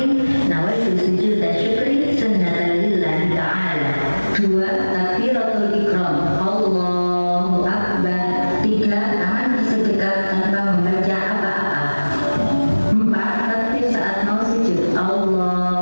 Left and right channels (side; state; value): both; inverted; correlation -1.00